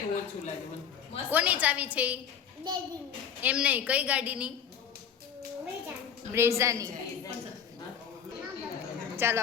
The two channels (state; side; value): quieter; right; 7.9 dB